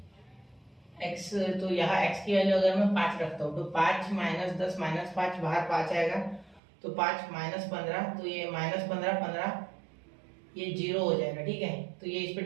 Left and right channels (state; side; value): drops out; left; at 6.6 s